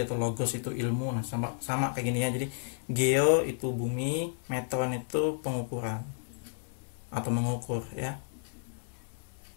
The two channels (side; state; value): right; silent; digital silence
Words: logos itu ilmu. Nah, sama kayak gini ya. Jadi geo itu bumi, metron itu pengukuran atau mengukur ya.